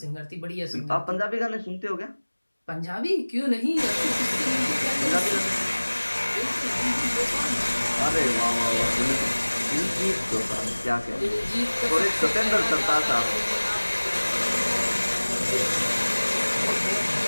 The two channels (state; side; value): inverted; both; correlation -1.00